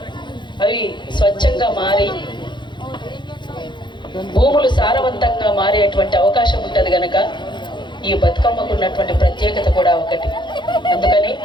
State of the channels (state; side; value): late; right; 0.23 ms